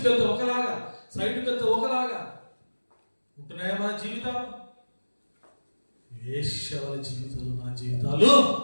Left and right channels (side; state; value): both; inverted; correlation -1.00